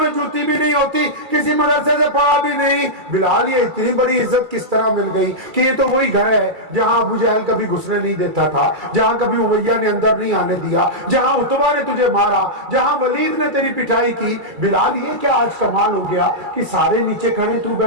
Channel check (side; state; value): left; late; 2.3 ms